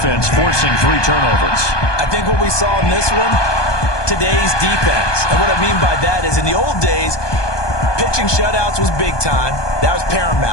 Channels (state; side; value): late; right; 1.2 ms